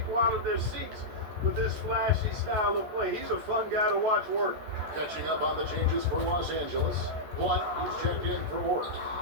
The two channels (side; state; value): left; late; 14 ms